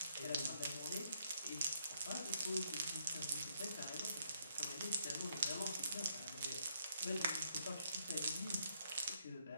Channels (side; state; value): both; inverted; correlation -0.72